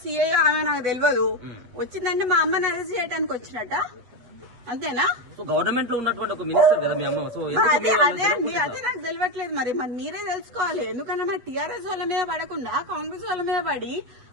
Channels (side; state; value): left; late; 8.1 ms